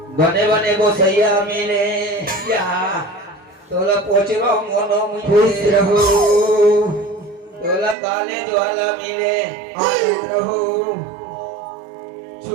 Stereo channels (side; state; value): left; drops out; at 8.0 s